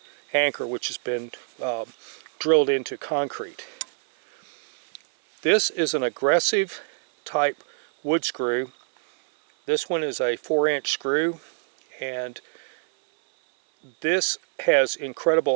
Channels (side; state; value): left; silent; 62 dB below the other